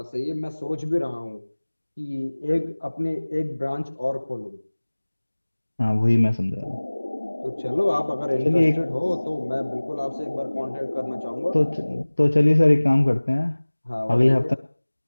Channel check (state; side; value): inverted; both; correlation -1.00